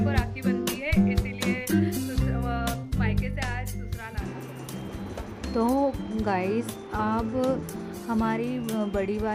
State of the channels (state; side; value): identical; both; correlation 1.00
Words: राखी बनती है, इसीलिए मायके से आज ससुराल आना। तो गाइस, अब हमारी बड़ी